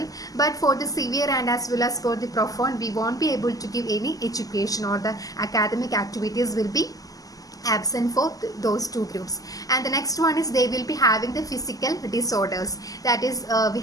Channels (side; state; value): right; late; 0.17 ms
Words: But for the severe and as well as for the profound, we won't be able to give any education, or the academic activities will be absent for those 2 groups. And the next one is they will be having the physical disorders. That is, we